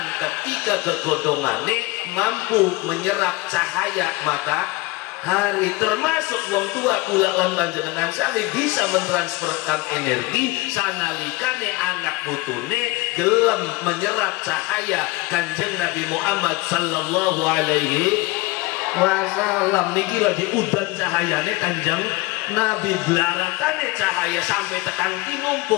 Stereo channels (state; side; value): quieter; right; 22.6 dB